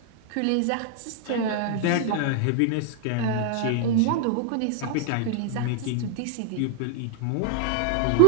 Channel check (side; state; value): both; different; correlation -0.01